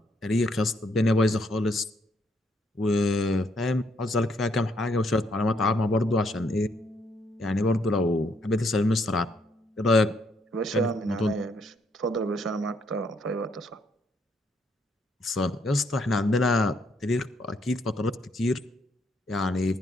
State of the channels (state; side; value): normal; both; correlation 0.72